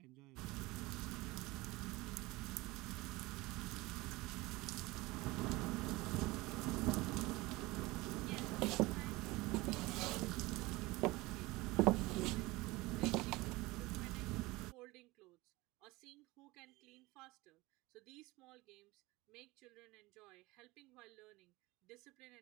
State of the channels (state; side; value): quieter; left; 21.4 dB